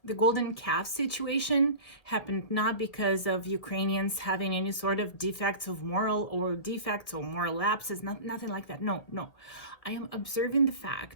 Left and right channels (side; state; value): right; late; 1.8 ms